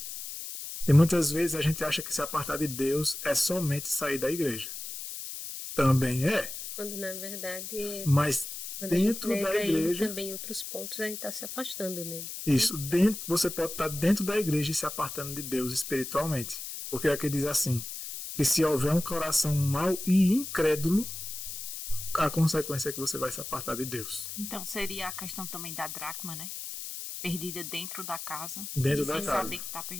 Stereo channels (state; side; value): noise; left; hiss, 8 dB below the sound